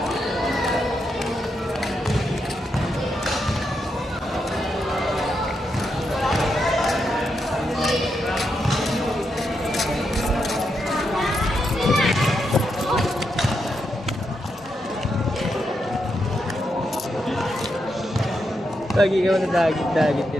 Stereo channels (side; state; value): both; normal; correlation 0.83